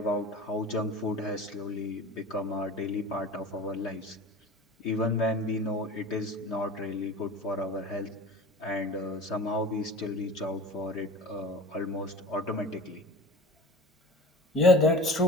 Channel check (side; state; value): both; normal; correlation 0.38